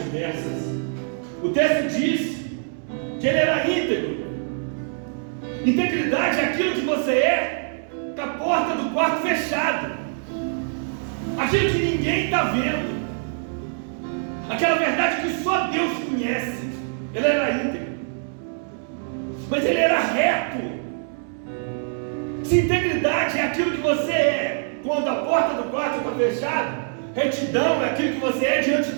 O texto diz que ele era íntegro. Integridade é aquilo que você é com a porta do quarto fechada, aquilo que ninguém está vendo, aquela verdade que só Deus conhece. Ele era íntegro, mas ele era reto. Se integridade é aquilo que você é quando a porta do quarto está fechada, retidão é aquilo que você é diante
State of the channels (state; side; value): silent; left; 63 dB below the other